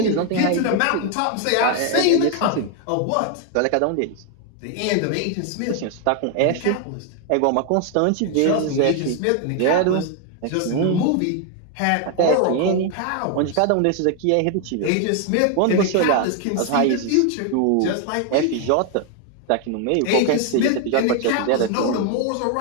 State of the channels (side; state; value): both; different; correlation 0.00